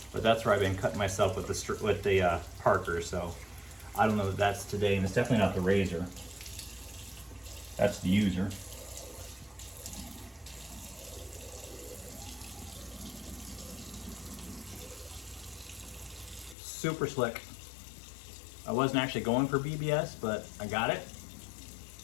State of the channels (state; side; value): drops out; right; at 16.6 s